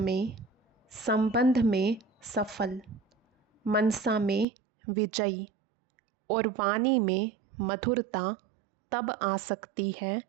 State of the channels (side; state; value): left; drops out; at 4.5 s